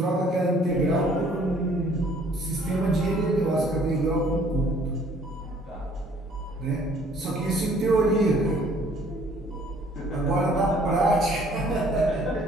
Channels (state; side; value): normal; both; correlation 0.59